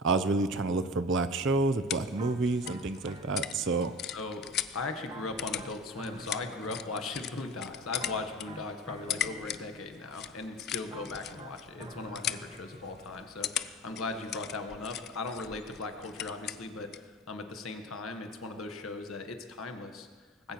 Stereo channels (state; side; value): normal; both; correlation 0.35